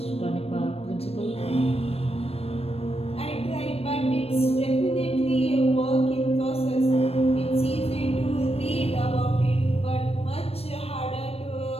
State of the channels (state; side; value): late; right; 0.29 ms